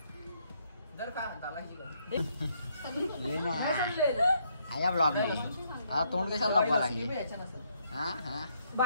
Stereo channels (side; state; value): both; inverted; correlation -0.73